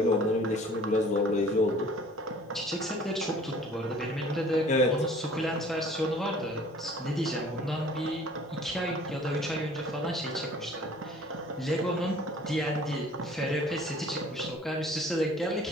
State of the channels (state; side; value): normal; both; correlation 0.51